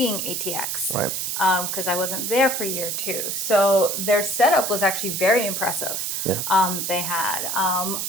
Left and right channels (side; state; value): right; noise; hiss, 2 dB below the sound